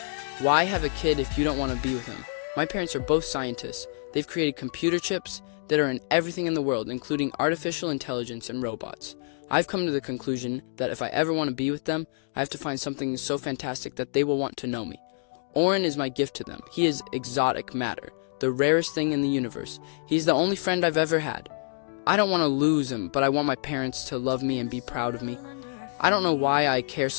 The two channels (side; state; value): right; silent; digital silence